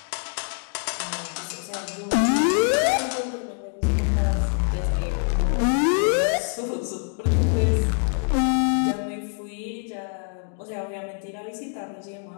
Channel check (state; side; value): silent; right; 58 dB below the other